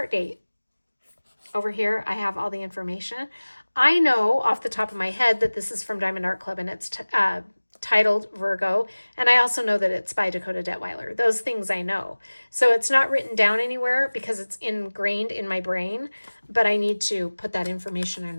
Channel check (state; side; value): inverted; both; correlation -1.00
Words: date. Over here, I have all the information. I know off the top of my head that this is from Diamond Art Club and it's titled Virgo, and I also know that it's by Dakota Detweiler. Those things I know. So it's not written down anywhere because it's ingrained in my brain, but I need to put that information